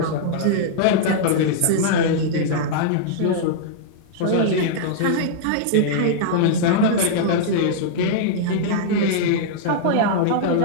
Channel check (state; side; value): different; both; correlation -0.02